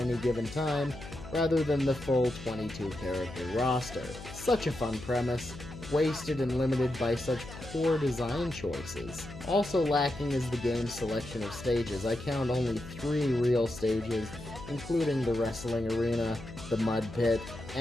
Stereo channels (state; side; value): noise; left; hum, 13 dB below the sound